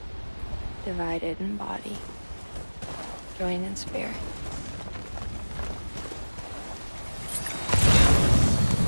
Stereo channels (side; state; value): both; inverted; correlation -1.00